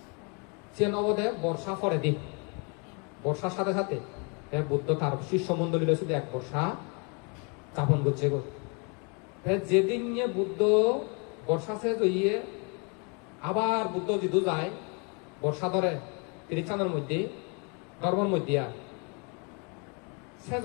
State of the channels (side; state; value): right; quieter; 34.1 dB